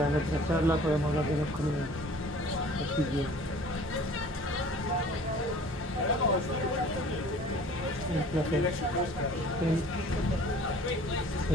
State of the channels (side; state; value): both; normal; correlation 0.49